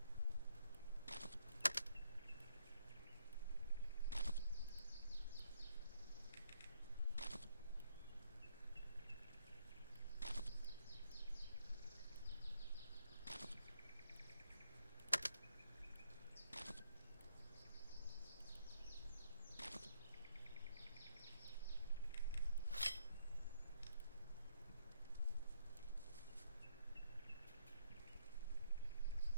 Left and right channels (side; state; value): both; inverted; correlation -0.71